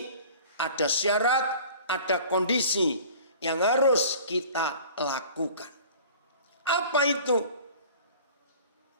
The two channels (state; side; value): inverted; both; correlation -0.44